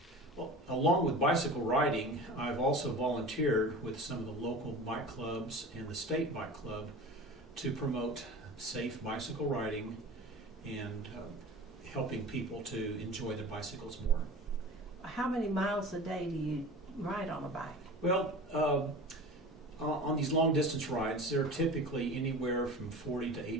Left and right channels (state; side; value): normal; both; correlation 0.36